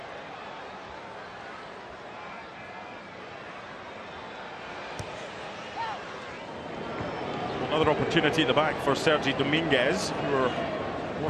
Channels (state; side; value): identical; both; correlation 1.00